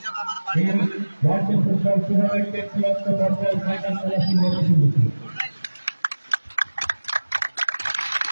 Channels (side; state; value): both; inverted; correlation -1.00